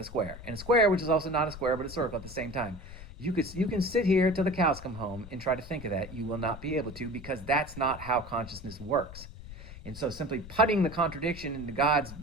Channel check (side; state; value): left; noise; rumble, 14 dB below the sound